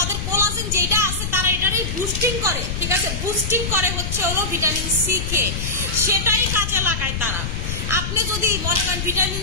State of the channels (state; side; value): noise; left; rumble, 4 dB below the sound